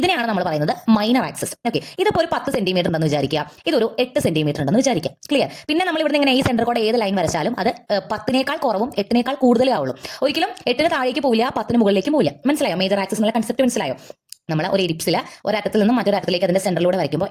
നമ്മൾ പറയുന്നത് മൈനർ ആക്സിസ്. ഓക്കെ, ഇതിപ്പോൾ ഒരു 10 സെന്റിമീറ്റർ ഉണ്ടെന്ന് വിചാരിക്കുക, ഇതൊരു 8 സെന്റിമീറ്റർ ഉണ്ടെന്ന് വിചാരിക്കുക. ക്ലിയർ? പിന്നെ നമ്മൾ ഇവിടെ ഇങ്ങനെ ഈ സെന്റർ കൂടെ ഏത് ലൈൻ വരച്ചാലും അത് 10നേക്കാൾ കുറവും 8നേക്കാൾ കൂടുതലേ ആവുള്ളൂ. ഒരിക്കലും 8ന് താഴേക്ക് പോവില്ല, 10ന് മുകളിലേക്ക് പോവില്ല. മനസ്സിലായോ? മേജർ ആക്സിസ് എന്നുള്ള കൺസെപ്റ്റ് മനസ്സിലായോ? നമ്മൾ ഒരു എലിപ്സിൽ ഒരറ്റത്തിൽ നിന്നും മറ്റൊരറ്റത്തിലേക്ക് അതിന്റെ സെന്ററിലൂടെ വരയ്ക്കുമ്പോൾ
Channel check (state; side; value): identical; both; correlation 1.00